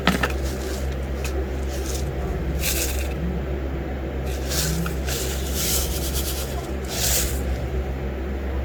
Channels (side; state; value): both; identical; correlation 1.00